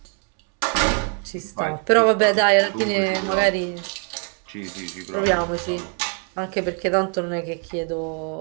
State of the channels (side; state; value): left; quieter; 36.1 dB